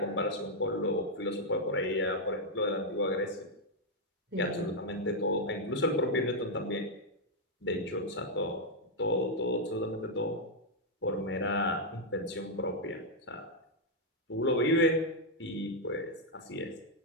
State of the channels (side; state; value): both; normal; correlation -0.02